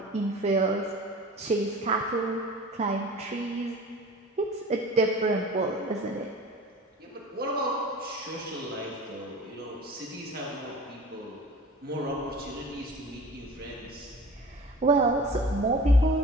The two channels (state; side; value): normal; both; correlation 0.41